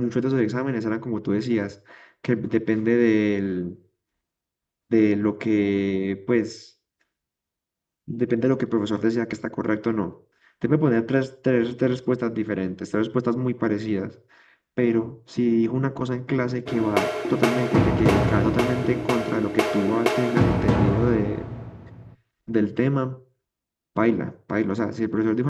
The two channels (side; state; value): both; identical; correlation 1.00